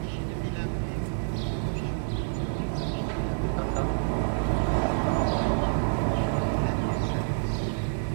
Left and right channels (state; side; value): silent; left; digital silence